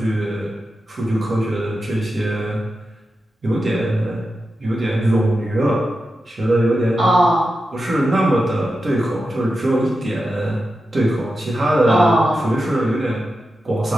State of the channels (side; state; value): both; normal; correlation 0.90